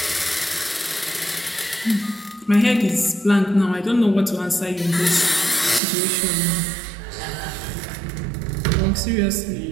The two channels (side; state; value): left; drops out; at 5.8 s